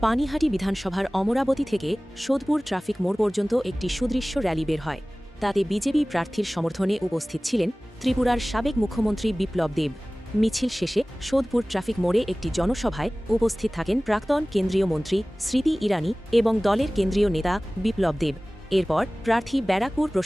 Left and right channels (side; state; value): both; normal; correlation 0.98